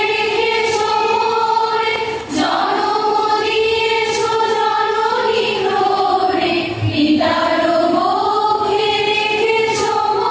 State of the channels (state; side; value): identical; both; correlation 1.00